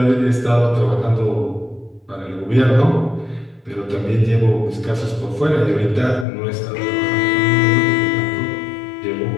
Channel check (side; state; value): right; drops out; at 6.2 s